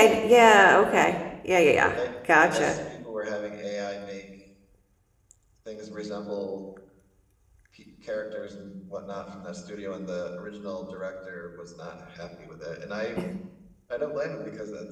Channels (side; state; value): both; identical; correlation 1.00